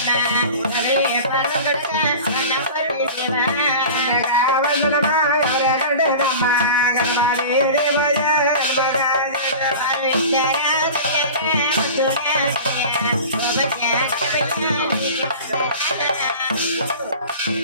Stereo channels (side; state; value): both; inverted; correlation -0.36